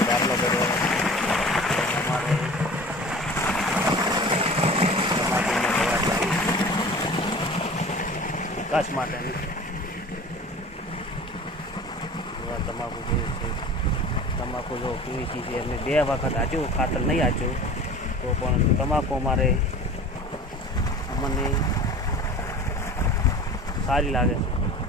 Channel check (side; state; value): both; normal; correlation 0.40